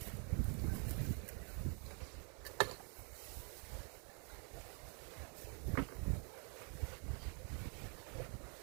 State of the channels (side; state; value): left; quieter; 38.8 dB